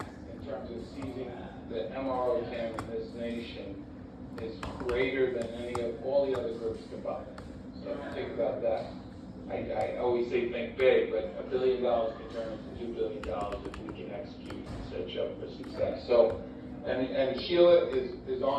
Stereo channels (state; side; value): identical; both; correlation 1.00